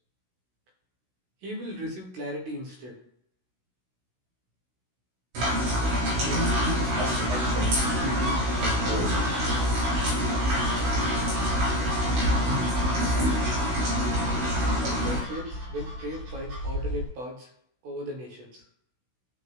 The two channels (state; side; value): late; left; 16 ms